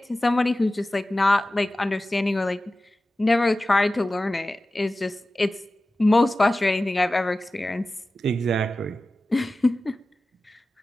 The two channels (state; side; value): normal; both; correlation 0.95